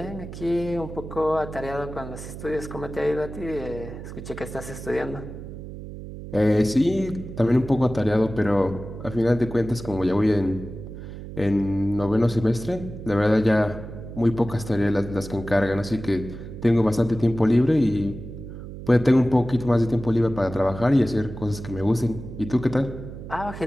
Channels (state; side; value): noise; right; hum, 11 dB below the sound